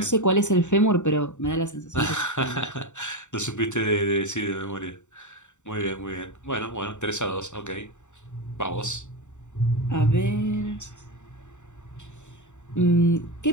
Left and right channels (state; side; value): late; right; 0.84 ms